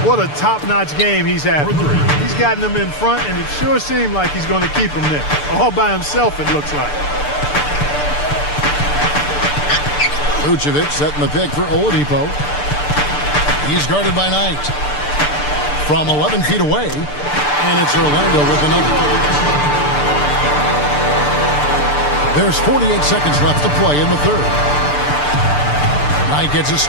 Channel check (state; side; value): late; right; 6.8 ms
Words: What a top-notch game he's having. He's gotten them in front, and it sure seemed like he's going to keep them there. All by himself, it looks like. Vucevic setting the pick for Oladipo. He's guarded by Knight. From 11 feet away, and it's Orlando with another. There's 48 seconds left to play in the third. Knight gets a